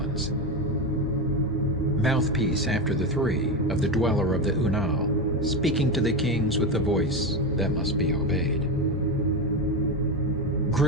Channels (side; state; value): both; normal; correlation 0.15